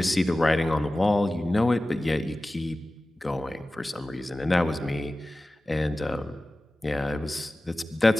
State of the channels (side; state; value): both; normal; correlation 0.96